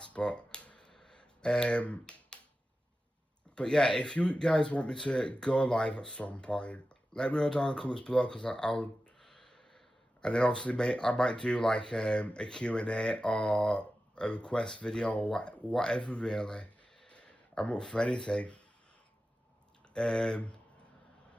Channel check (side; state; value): both; normal; correlation 0.93